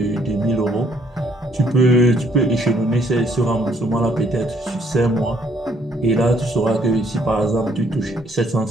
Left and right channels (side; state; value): both; normal; correlation 0.66